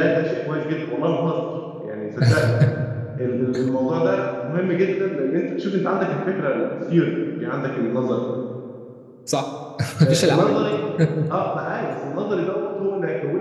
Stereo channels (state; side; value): identical; both; correlation 1.00